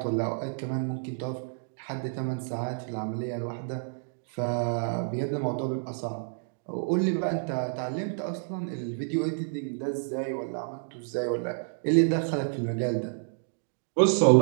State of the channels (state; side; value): silent; left; digital silence